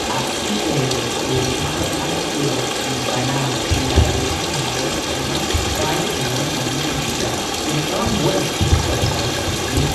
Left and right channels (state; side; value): identical; both; correlation 1.00